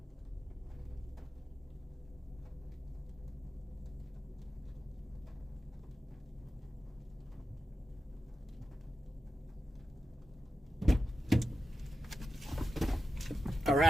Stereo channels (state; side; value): normal; both; correlation 0.90